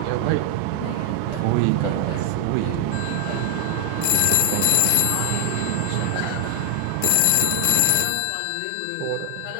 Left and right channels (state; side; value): different; both; correlation 0.00